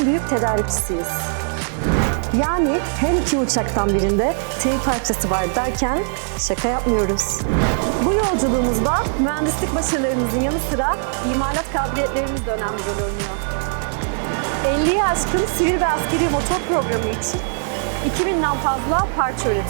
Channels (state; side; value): silent; left; 65 dB below the other